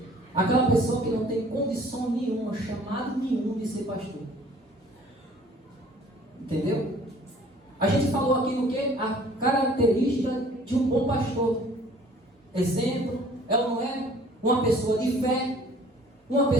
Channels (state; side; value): normal; both; correlation 0.53